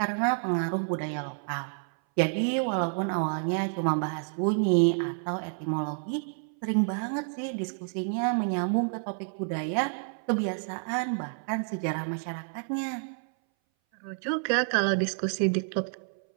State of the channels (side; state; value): left; silent; 58 dB below the other